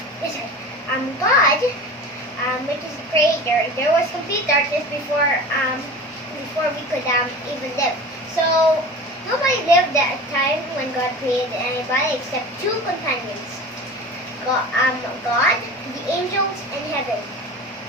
God, which is the creator, there was complete darkness before we could even live. So nobody lived at a time when God created anybody except two companions: God, the angels, and heaven.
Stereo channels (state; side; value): normal; both; correlation 0.35